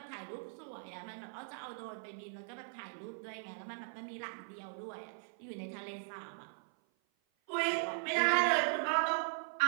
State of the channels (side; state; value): left; silent; 52 dB below the other